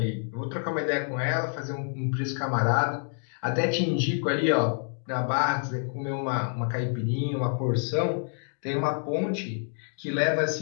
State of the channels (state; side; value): silent; right; 59 dB below the other